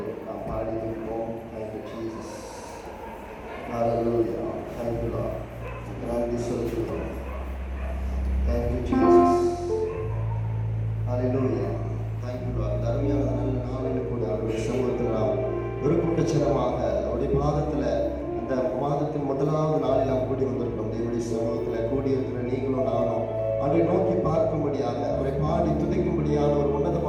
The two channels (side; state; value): both; identical; correlation 1.00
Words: நாம் பாடி இருப்போம். Thank you Jesus. Hallelujah. Thank you Lord. நன்றி சொல்லுகிறோம். Thank you Jesus. Hallelujah. Thank you Lord. அருமையான நல்ல நாளில் கூட அவருடைய சமூகத்தில் நாம் ஒரு கூட்டச்சனமாக அவருடைய பாதத்தில் இந்த மாதத்தின் முதலாவது நாளில் நாம் கூடி வந்திருக்கோம். தேவனுடைய சமூகத்தில் கூடியிருக்கிற நீங்களும் நானும் அவரை நோக்கி பார்க்கும்படியாக, அவரை பாடி துதிக்கும்படியான ஒரு